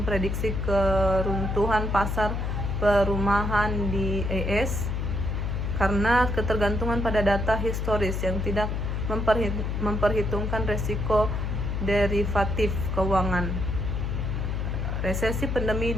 keruntuhan pasar perumahan di AS karena ketergantungan pada data historis yang tidak memperhitungkan resiko derivatif keuangan. Resesi pandemi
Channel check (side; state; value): left; noise; hum, 1 dB below the sound